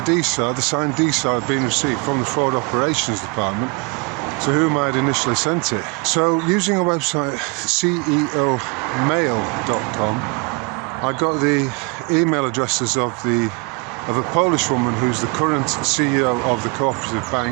the signed DSAR, had been received from the Fraud Operations Department, to whom I had initially sent it. So, using a website, ceomail.com, I got the email addresses of a Polish woman who's the current CEO of the Cooperative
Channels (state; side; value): quieter; left; 30.6 dB